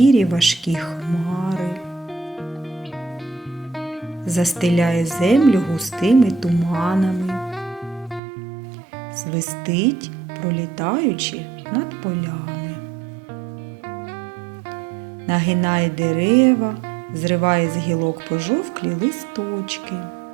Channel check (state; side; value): drops out; left; at 8.2 s